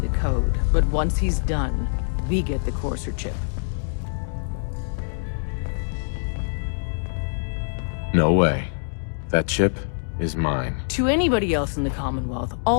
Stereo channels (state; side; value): silent; right; digital silence